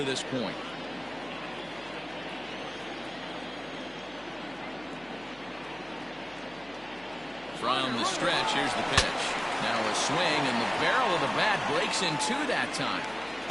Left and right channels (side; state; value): left; noise; hum, 25 dB below the sound